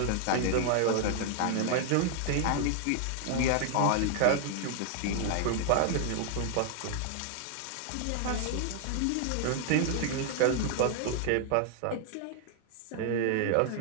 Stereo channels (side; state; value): both; different; correlation 0.00